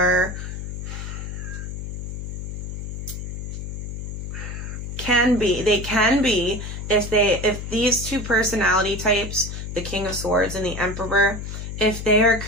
can be if these two personality types, the King of Swords and the Emperor, if they are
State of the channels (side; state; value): left; noise; hum, 7 dB below the sound